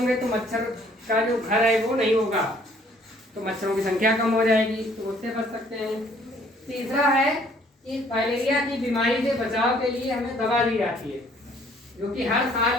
तो मच्छर का जो घर है वो नहीं होगा, तो मच्छरों की संख्या कम हो जाएगी, तो उससे बच सकते हैं। तीसरा है कि फाइलेरिया की बीमारी से बचाव के लिए हमें दवा दी जाती है, जो कि हर साल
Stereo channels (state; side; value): normal; both; correlation 0.60